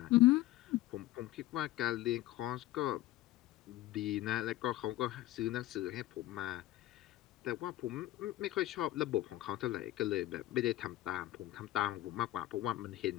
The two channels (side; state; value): right; quieter; 15.8 dB